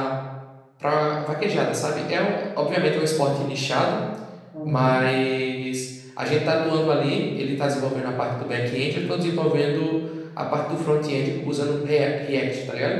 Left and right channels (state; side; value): identical; both; correlation 1.00